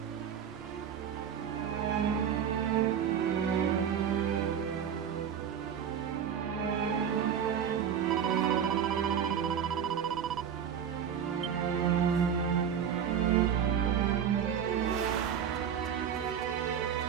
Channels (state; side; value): quieter; left; 8.3 dB